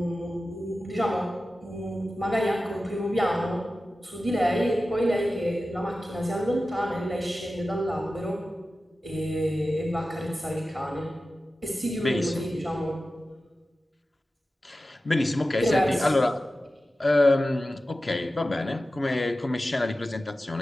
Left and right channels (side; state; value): both; normal; correlation 0.94